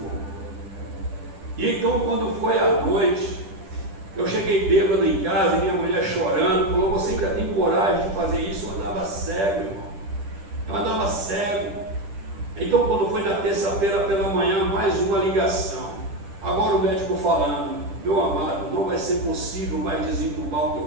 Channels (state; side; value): late; left; 10 ms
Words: E então, quando foi à noite, eu cheguei bêbado em casa e minha mulher chorando, falou: você ainda tem coragem de fazer isso? Eu andava cego, irmão. Eu andava cego. Então, quando foi na terça-feira pela manhã, mais uma ligação. Agora o médico falando: meu amado, não vai ser possível mais desentubar o